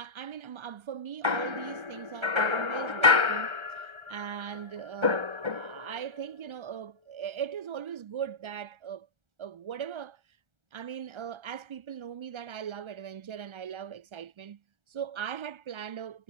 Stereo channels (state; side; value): late; left; 1.3 ms